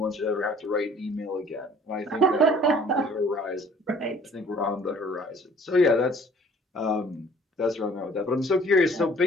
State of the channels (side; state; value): both; normal; correlation 0.54